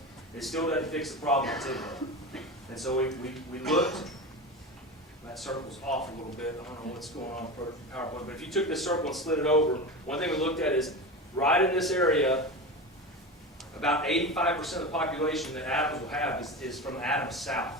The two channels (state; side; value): normal; both; correlation 0.25